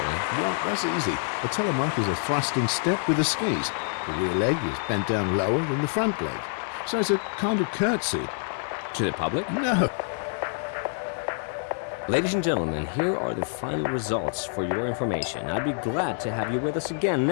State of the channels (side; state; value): right; silent; digital silence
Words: Well, that's easy. A telemark is a thrusting step with the skis. The rear leg is bent down lower than the front leg. So it's a kind of curtsy. To the public? No. Ladies and gentlemen, here are the final results for your information. I'd be glad to have you with us again